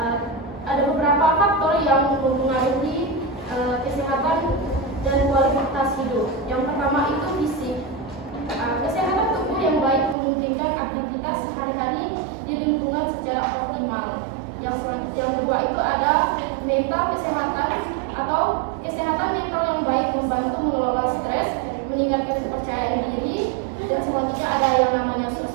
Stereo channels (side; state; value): left; drops out; at 10.2 s